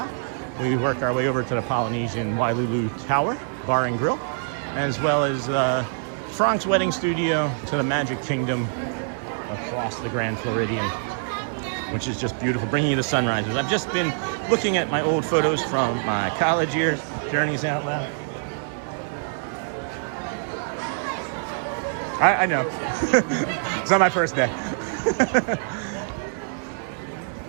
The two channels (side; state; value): left; silent; digital silence